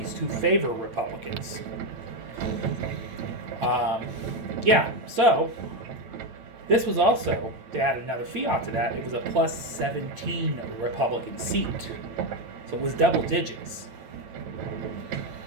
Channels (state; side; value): late; left; 9.0 ms